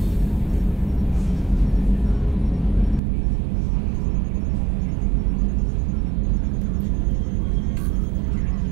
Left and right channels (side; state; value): left; drops out; at 3.0 s